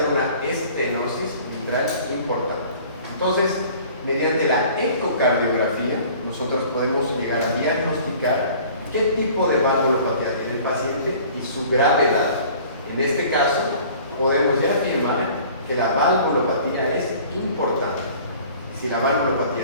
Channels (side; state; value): both; inverted; correlation -0.49